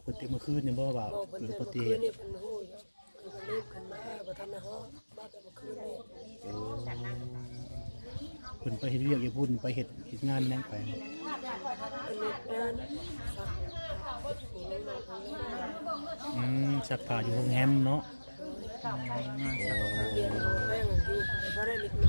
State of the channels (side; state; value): both; inverted; correlation -1.00